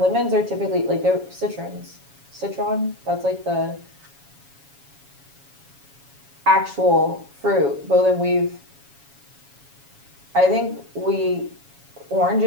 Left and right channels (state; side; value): late; left; 7.2 ms